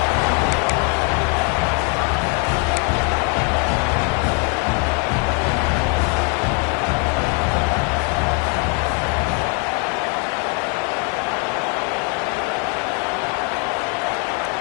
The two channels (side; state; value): right; quieter; 35.6 dB